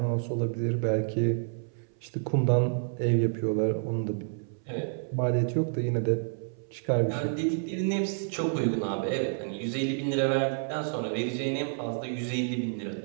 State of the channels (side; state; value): left; silent; 58 dB below the other